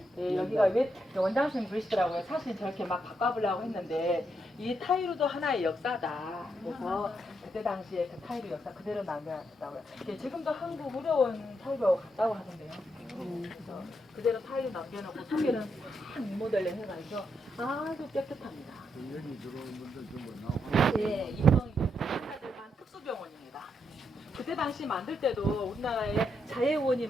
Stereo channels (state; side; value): normal; both; correlation 0.80